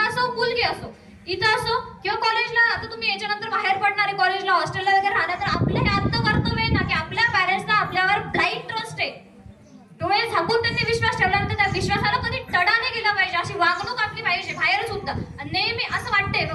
असो मुलगी असो, इथं असो किंवा कॉलेजला. आता तुम्ही याच्यानंतर बाहेर पडणारे कॉलेजला हॉस्टेलला वगैरे राहणार, तर आपलं हे आत्ता कर्तव्य आहे ना की आपल्या पॅरेंट्सला आपल्यावर ब्लाइंड ट्रस्ट आहे, डोळे झाकून त्यांनी विश्वास ठेवल्यानंतर त्या विश्वासाला कधी तडा नाही गेला पाहिजे, अशी वागणूक आपली पाहिजे बाहेर सुद्धा. आणि नेहमी असं वाटतंय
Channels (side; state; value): both; identical; correlation 1.00